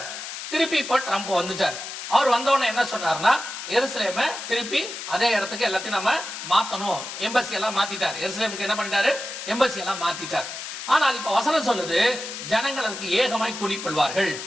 திருப்பி இப்ப ட்ரம்ப் வந்துட்டார். அவர் வந்தவொடனே என்ன சொன்னார்னா, எருசலேம திருப்பி அதே இடத்துக்கு எல்லாத்தையும் நம்ம மாத்தணும். எம்பசி எல்லாம் மாத்திட்டார். எருசலேமுக்கு என்ன பண்ணிட்டாரு? எம்பசி எல்லாம் மாத்திட்டார். ஆனால் இப்ப வசனம் சொல்லுது, ஜனங்கள் அதுக்கு ஏகமாய் கூடிக்கொள்வார்கள்.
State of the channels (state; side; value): noise; left; hiss, 8 dB below the sound